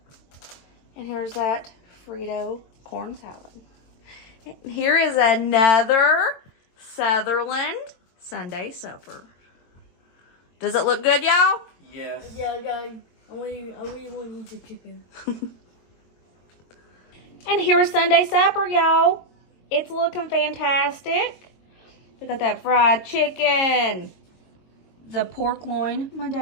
And here's that Frito corn salad. And here is another Sutherland Sunday supper. Does it look good, y'all? Yes. Yeah, I really want to eat the chicken. And here's Sunday supper, y'all. It's looking fantastic. We got that fried chicken, the pork loin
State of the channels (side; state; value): right; late; 22 ms